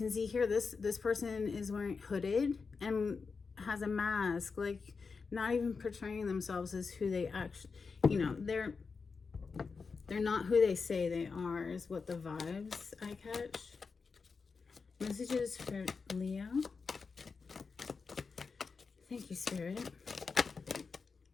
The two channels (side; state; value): right; quieter; 4.9 dB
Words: see here, this person is wearing hooded and has a mask, like not even portraying themselves as who they actually, you know, they're not who they say they are, is what the vibes I catch. Messages for Leo. Thank you, Spirit.